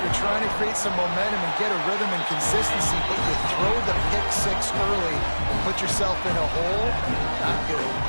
you're trying to create some momentum and get a rhythm and consistency, but you throw the pick six early and put yourself in a hole. Not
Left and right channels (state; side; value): inverted; both; correlation -1.00